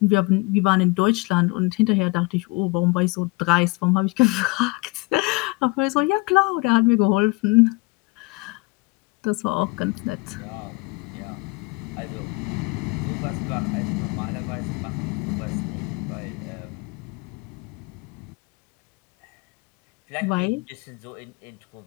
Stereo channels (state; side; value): quieter; right; 25.7 dB